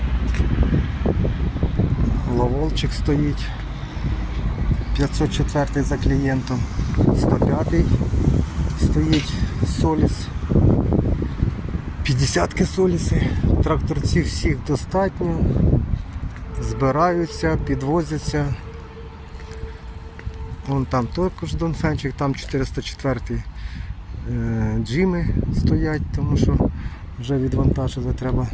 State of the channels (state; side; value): identical; both; correlation 1.00